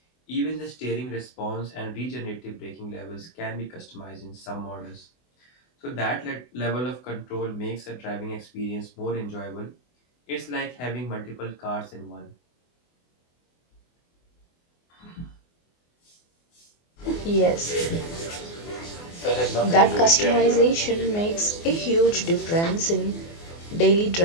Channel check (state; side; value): late; right; 24 ms